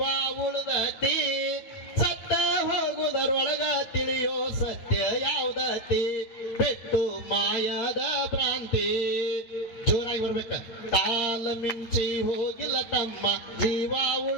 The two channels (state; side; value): late; right; 8.7 ms